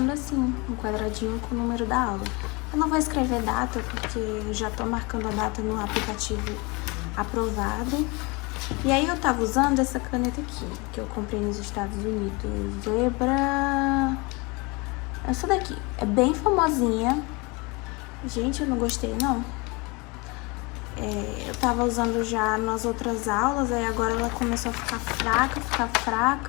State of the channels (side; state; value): right; quieter; 27.1 dB